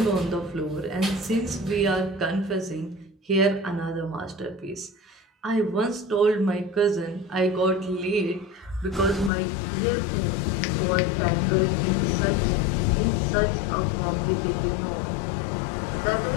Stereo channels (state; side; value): drops out; right; at 9.3 s